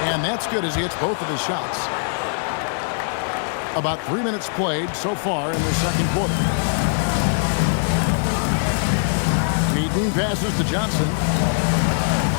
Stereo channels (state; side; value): silent; right; digital silence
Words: And that's good as he hits both of his shots. About 3 minutes played so far in the second quarter. Payton passes to Johnson.